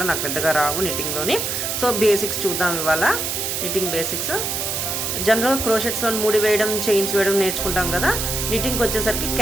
నాకు పెద్దగా రావు నిట్టింగ్లోని. సో బేసిక్స్ చూద్దాం ఇవాళ, నిట్టింగ్ బేసిక్స్. జనరల్ క్రోషెట్స్లో ముడి వేయడం, చైన్స్ వేయడం నేర్చుకుంటాం కదా. నిట్టింగ్కి వచ్చేసరికి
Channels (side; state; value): right; noise; hiss, 1 dB below the sound